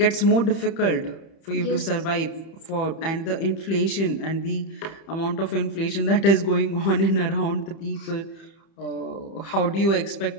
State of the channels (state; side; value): late; right; 30 ms